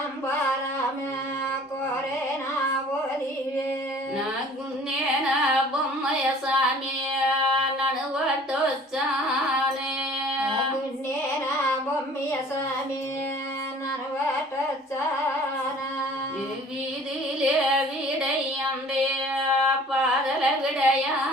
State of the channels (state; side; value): normal; both; correlation 0.50